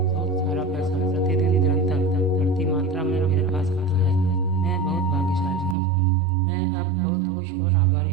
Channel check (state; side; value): drops out; left; at 5.8 s